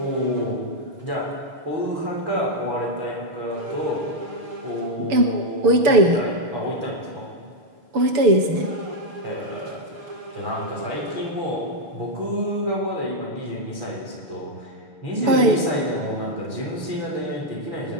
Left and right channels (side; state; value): left; late; 6.9 ms